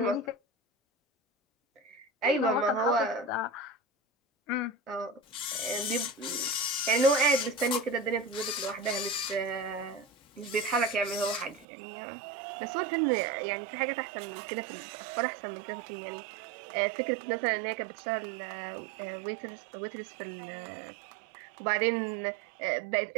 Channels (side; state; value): left; drops out; at 11.7 s